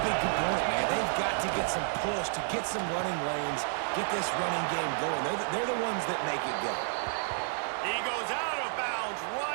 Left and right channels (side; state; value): left; silent; digital silence